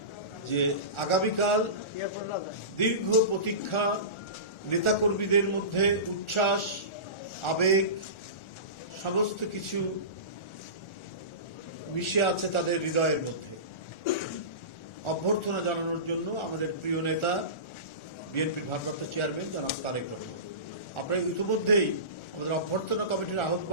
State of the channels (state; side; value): late; right; 1.4 ms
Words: যে আগামীকাল দীর্ঘ প্রতীক্ষা, নেতাকর্মীদের মধ্যে উচ্ছ্বাস, আবেগ সমস্ত কিছু মিশে আছে তাদের হৃদয়ের মধ্যে। অভ্যর্থনা জানানোর জন্য আমাদের প্রিয় নেতা বিএনপির ভারপ্রাপ্ত চেয়ারম্যান জনাব তারেক রহমান, আপনারা ইতিমধ্যেই আমাদের অভ্যর্থনা কমিটির